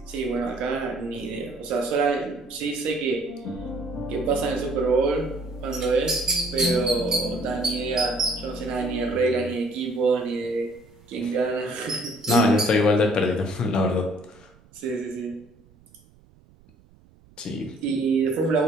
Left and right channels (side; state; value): right; noise; rumble, 28 dB below the sound